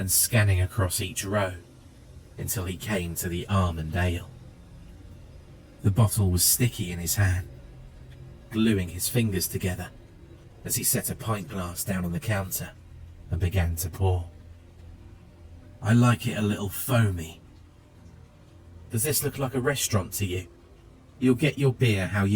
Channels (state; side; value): identical; both; correlation 1.00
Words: scanning across each row until he came to the almond ale. The bottle was sticky in his hand, gluing his fingers together as he set a pint glass down on the counter and began to pour. I like it a little foamy. Does this look like a restaurant to you? You'll get your beer how